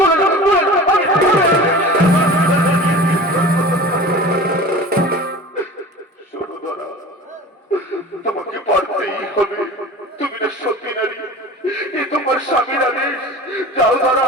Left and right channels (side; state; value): both; normal; correlation 0.38